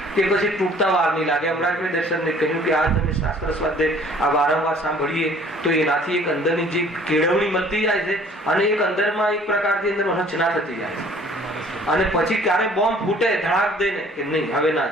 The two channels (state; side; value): normal; both; correlation 0.54